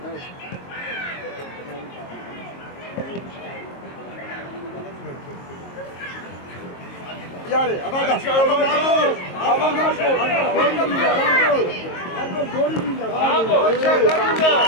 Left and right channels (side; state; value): right; late; 22 ms